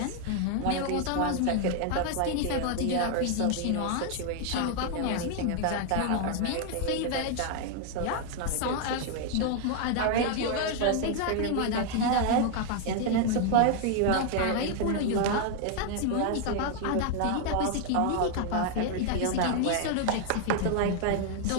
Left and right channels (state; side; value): different; both; correlation 0.00